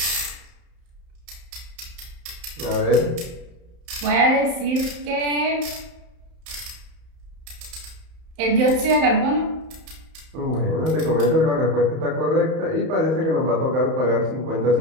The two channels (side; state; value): left; late; 31 ms